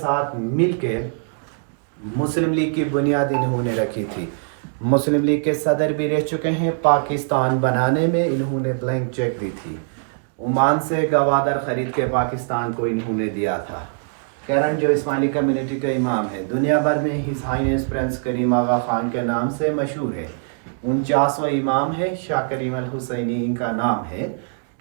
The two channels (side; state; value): left; silent; digital silence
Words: मिल के मुस्लिम लीग की बुनियाद इन्होंने रखी थी। मुस्लिम लीग के सदर भी रह चुके हैं। पाकिस्तान बनाने में इन्होंने ब्लैंक चेक दी थी। ओमान से गवादर ख़रीद के पाकिस्तान को इन्होंने दिया था। करंट जो इस्माइली कम्युनिटी का इमाम है दुनिया भर में his highness prince Karim Aga Khan के नाम से मशहूर है। 49वां इमाम है शाह करीम अल हुसैनी इनका नाम है।